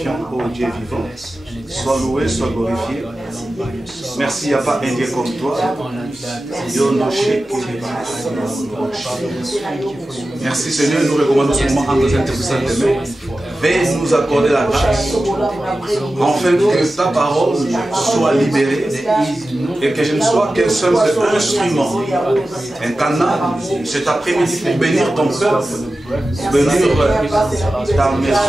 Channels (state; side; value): normal; both; correlation 0.94